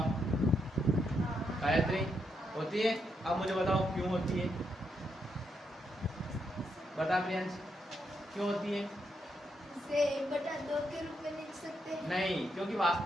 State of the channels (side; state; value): both; normal; correlation 0.80